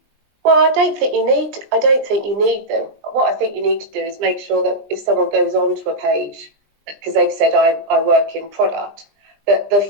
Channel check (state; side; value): late; left; 20 ms